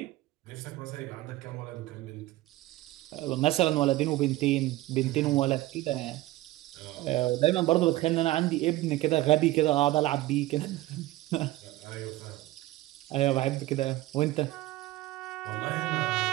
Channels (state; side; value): quieter; left; 17.1 dB